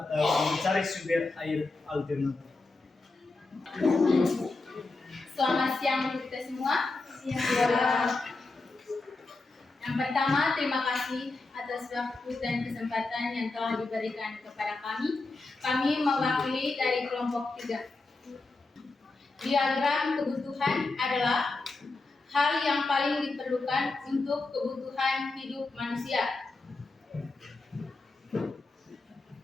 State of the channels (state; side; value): quieter; right; 3.4 dB